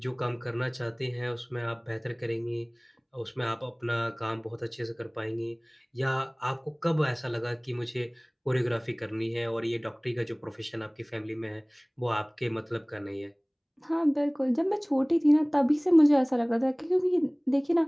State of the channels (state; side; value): identical; both; correlation 1.00